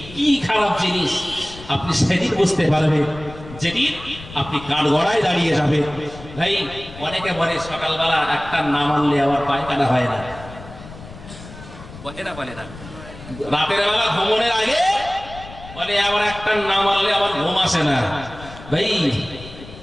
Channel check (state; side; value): noise; left; rumble, 16 dB below the sound